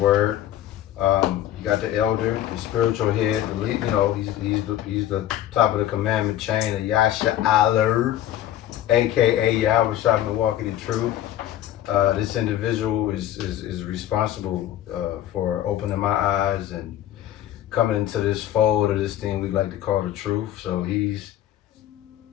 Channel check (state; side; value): quieter; right; 12.4 dB